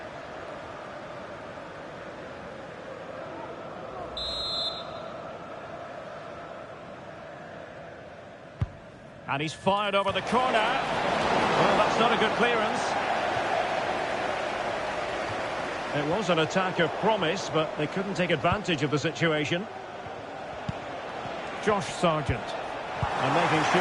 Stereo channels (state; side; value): identical; both; correlation 1.00